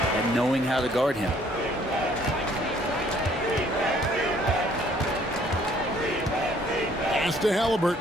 at knowing how to guard him. Pass to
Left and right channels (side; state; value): both; normal; correlation 0.61